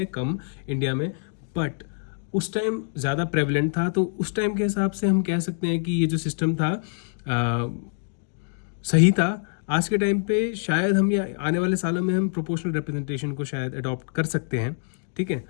कम इंडिया में, बट उस टाइम ज़्यादा प्रेवलेंट था. तो उस टाइम के हिसाब से हम कह सकते हैं कि ये जो सिस्टम था सही था. आज के टाइम पे शायद हम या आने वाले सालों में हम प्रोपोर्शनल रिप्रेजेंटेशन को शायद अडॉप्ट कर सकते हैं. ठीक है,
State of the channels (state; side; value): silent; right; digital silence